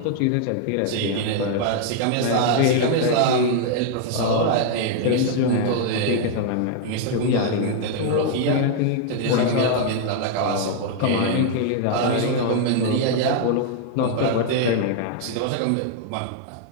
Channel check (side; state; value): both; different; correlation 0.00